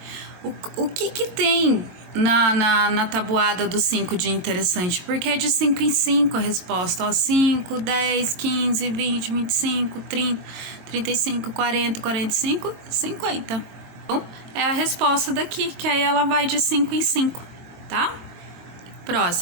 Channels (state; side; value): late; left; 23 ms